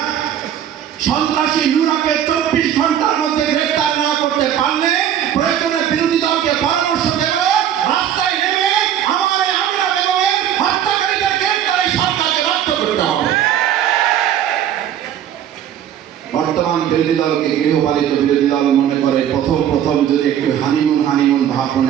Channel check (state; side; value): quieter; left; 10.1 dB